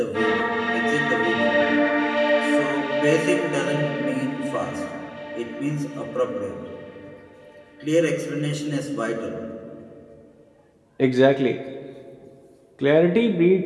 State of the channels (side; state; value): both; identical; correlation 1.00